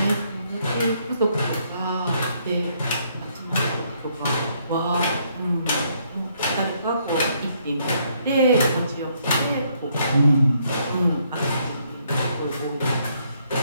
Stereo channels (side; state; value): both; inverted; correlation -0.70